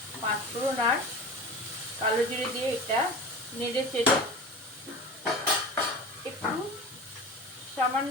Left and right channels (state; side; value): normal; both; correlation 0.33